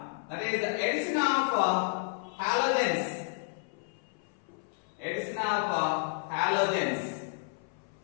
that is the addition of halogens. Addition of halogens.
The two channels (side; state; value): right; silent; 57 dB below the other